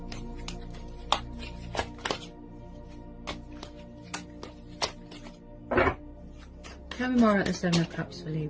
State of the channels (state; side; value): identical; both; correlation 1.00